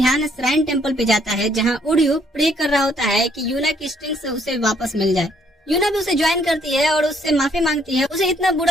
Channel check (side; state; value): both; normal; correlation 0.67